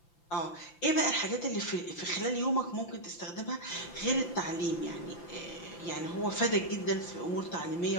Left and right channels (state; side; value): late; right; 5.9 ms